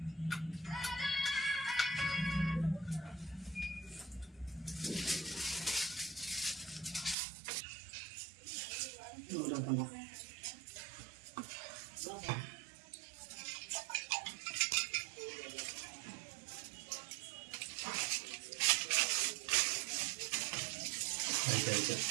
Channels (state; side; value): drops out; left; at 7.2 s